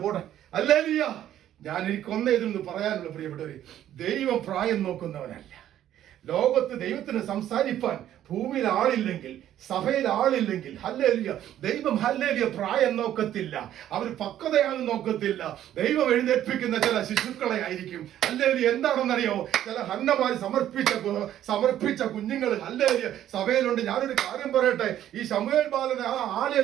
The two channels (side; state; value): left; quieter; 11.7 dB